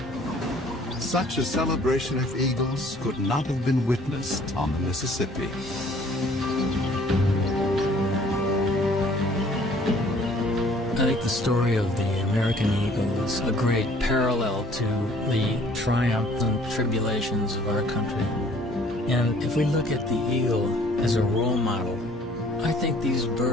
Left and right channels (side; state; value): both; normal; correlation 0.56